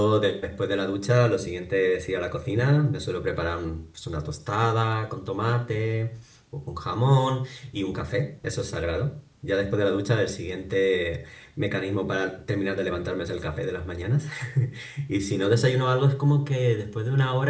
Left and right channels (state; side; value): identical; both; correlation 1.00